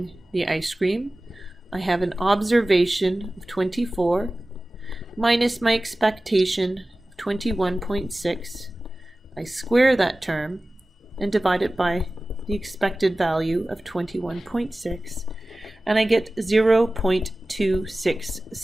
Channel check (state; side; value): normal; both; correlation 0.97